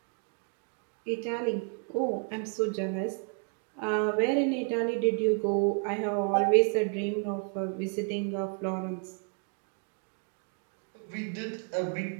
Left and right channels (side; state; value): left; quieter; 39.7 dB